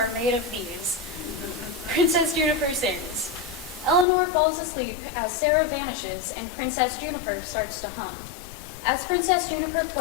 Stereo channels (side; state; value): right; drops out; at 4.0 s